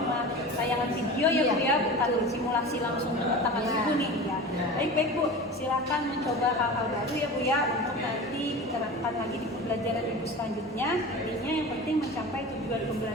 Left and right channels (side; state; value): both; normal; correlation 0.33